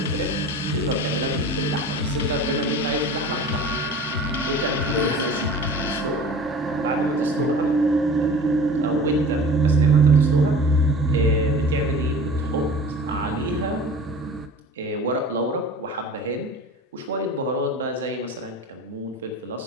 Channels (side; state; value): both; normal; correlation 0.40